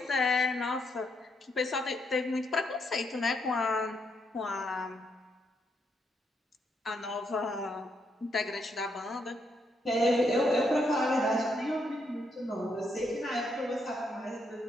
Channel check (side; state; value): both; normal; correlation 0.77